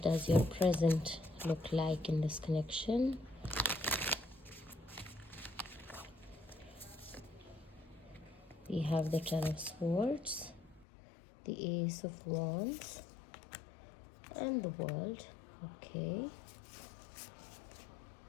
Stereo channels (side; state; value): right; drops out; at 10.9 s